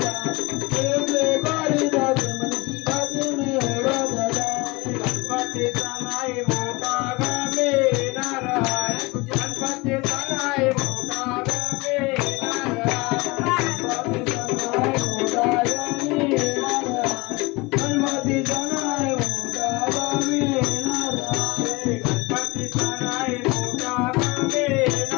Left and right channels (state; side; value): quieter; right; 24.3 dB